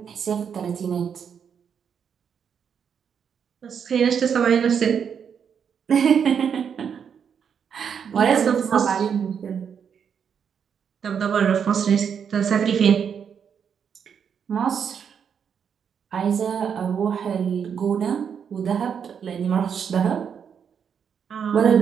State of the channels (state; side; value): quieter; left; 7.4 dB